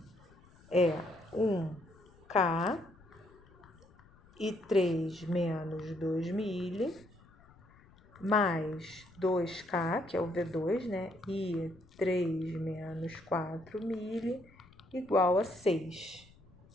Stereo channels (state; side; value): noise; left; rumble, 26 dB below the sound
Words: é 1K e 3 menos 2 milho, mais 2K, que é o V2, né? E 3 menos 4 milho, igual a 6.